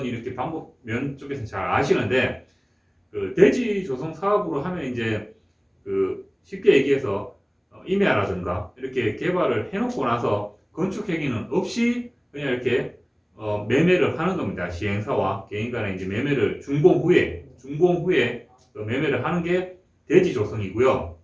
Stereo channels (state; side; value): identical; both; correlation 1.00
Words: 이렇게 방법 면 쪽에서 잘 아시는데 그 대지 조성 사업으로 하면 이제 그 쉽게 얘기해서 임야라든가 이렇게 개발을 해놓고 나서 건축 행위는 없이 그냥 이렇게 매매를 하는 겁니다. 시행사와 개인 간에 이제 매매를 준공 후에 매매를 하는 게 대지 조성이고요.